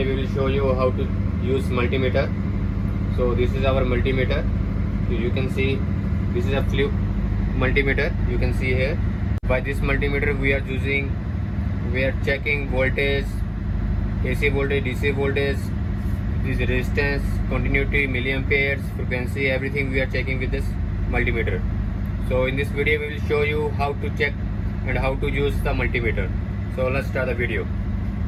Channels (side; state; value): both; identical; correlation 1.00